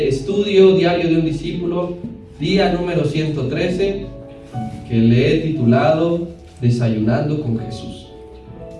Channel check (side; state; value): both; identical; correlation 1.00